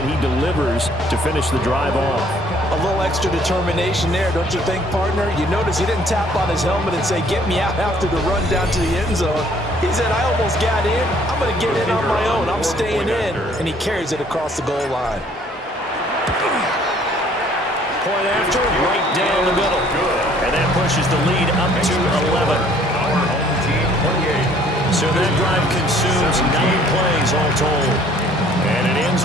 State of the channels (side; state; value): both; normal; correlation 0.59